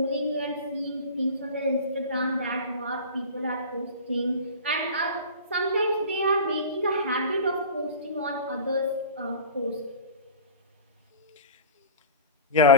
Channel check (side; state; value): both; inverted; correlation -0.35